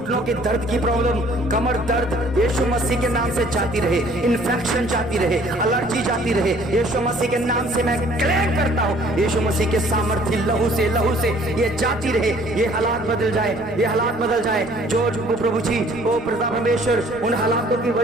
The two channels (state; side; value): noise; left; rumble, 25 dB below the sound